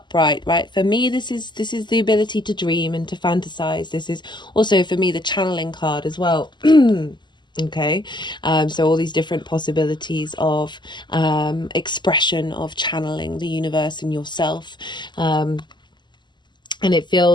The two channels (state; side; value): late; right; 0.21 ms